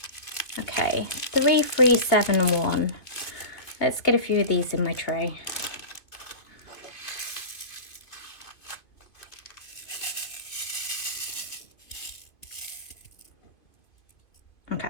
Okay, 3371. Let's get a few of these in my tray. Okay,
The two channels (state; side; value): late; right; 2.3 ms